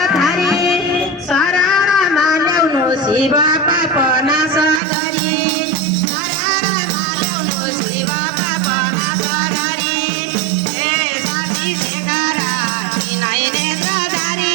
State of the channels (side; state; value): left; drops out; at 4.8 s